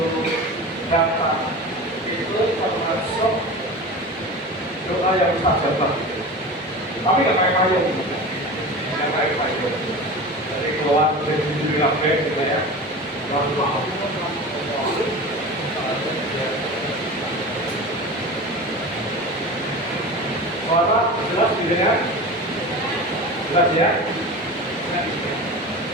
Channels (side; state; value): both; normal; correlation 0.31